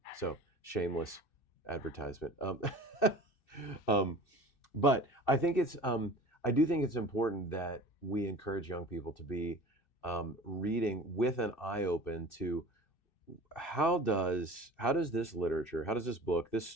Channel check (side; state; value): right; late; 2.6 ms